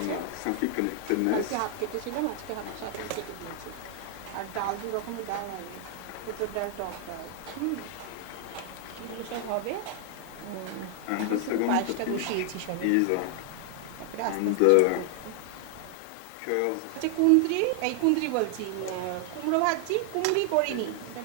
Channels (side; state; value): both; different; correlation 0.00